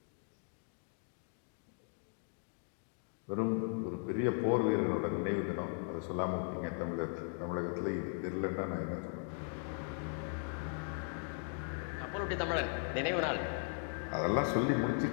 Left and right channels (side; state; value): right; silent; 52 dB below the other